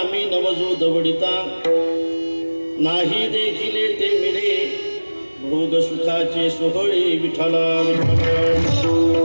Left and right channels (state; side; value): inverted; both; correlation -1.00